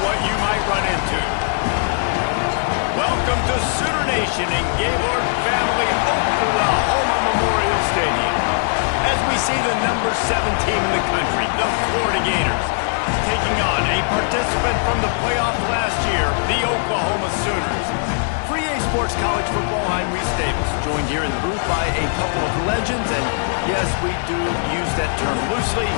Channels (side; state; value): right; silent; digital silence